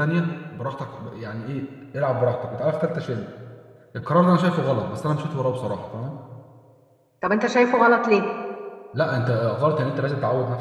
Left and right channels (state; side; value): identical; both; correlation 1.00